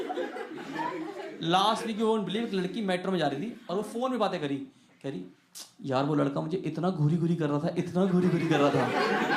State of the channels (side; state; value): both; identical; correlation 1.00